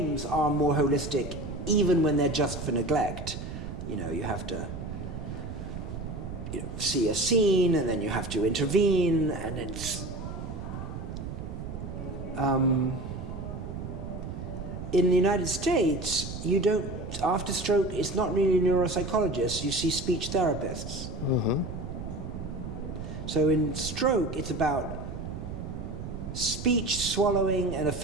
are more holistic even when they're just for neglect. You have to see a scene and then you have to intervene, and it's... in the United States, you don't, after stroke, it's not really neuropsychologists, you see speech therapists. So in stroke, it's about speech, swallowing, and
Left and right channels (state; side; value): noise; right; rumble, 7 dB below the sound